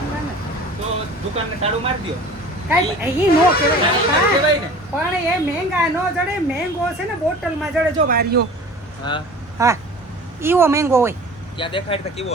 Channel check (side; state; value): both; normal; correlation 0.41